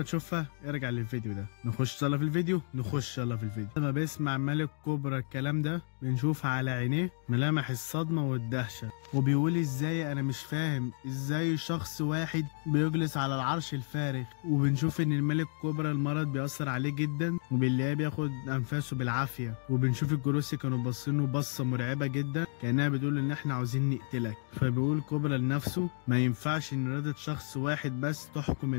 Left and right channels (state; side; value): silent; right; 57 dB below the other